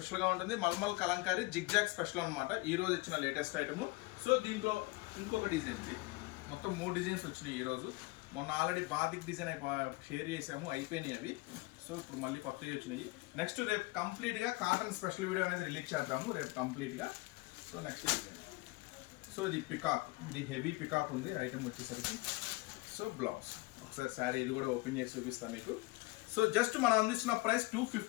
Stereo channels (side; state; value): right; quieter; 23.4 dB